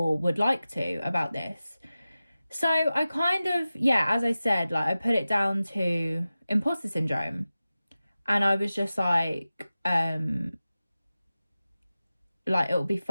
would like to about this? So I kind of, yeah, as I said, like, I put it down to imposter syndrome. And I was just like, it'll be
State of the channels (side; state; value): both; inverted; correlation -0.95